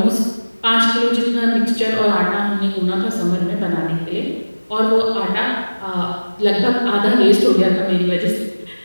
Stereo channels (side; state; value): both; inverted; correlation -1.00